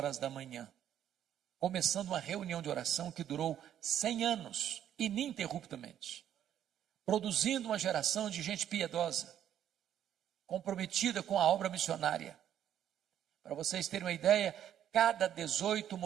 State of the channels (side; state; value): left; quieter; 10.4 dB